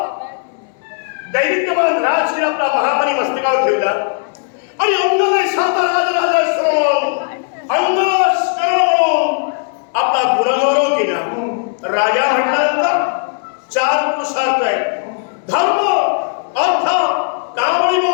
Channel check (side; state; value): right; silent; 59 dB below the other